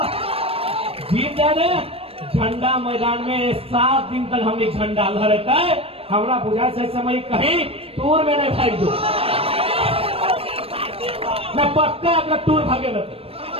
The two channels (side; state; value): left; late; 0.28 ms